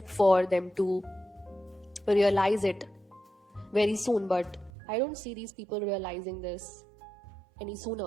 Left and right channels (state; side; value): drops out; left; at 4.7 s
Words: for them to realize it very soon, but I don't see these people realizing this any